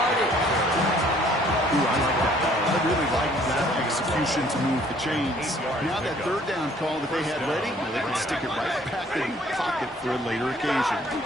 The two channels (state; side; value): normal; both; correlation 0.59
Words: Ooh, I like that. I really like that execution to move the chains. Now that 3rd down call that they had ready, they can stick it right back in the pocket for a later occasion.